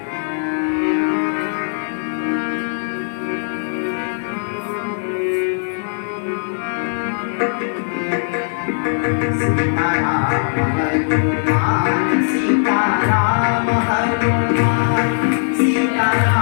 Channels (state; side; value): silent; right; digital silence